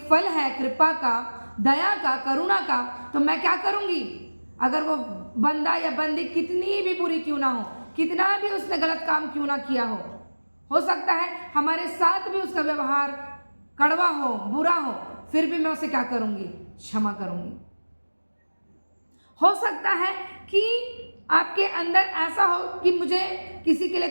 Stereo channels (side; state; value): both; inverted; correlation -1.00